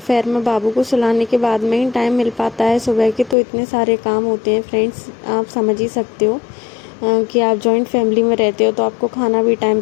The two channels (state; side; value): drops out; right; at 3.4 s